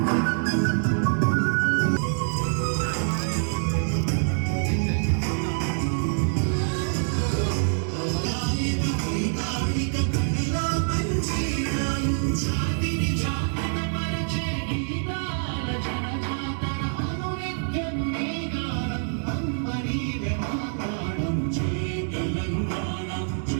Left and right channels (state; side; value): silent; left; digital silence